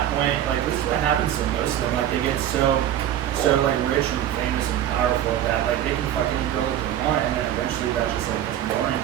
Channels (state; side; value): quieter; left; 11.3 dB